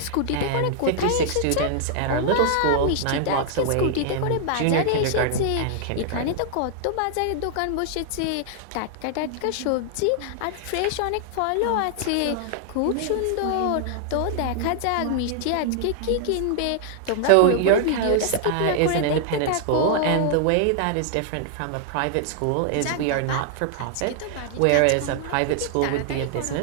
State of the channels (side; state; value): both; different; correlation -0.01